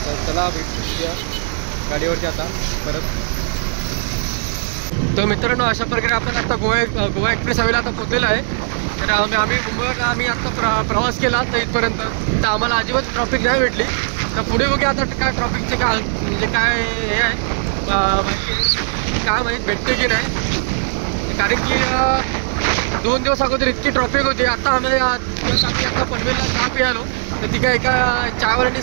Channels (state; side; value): silent; left; digital silence